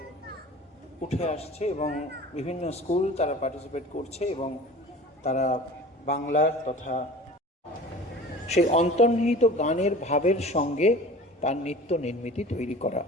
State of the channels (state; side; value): normal; both; correlation 0.41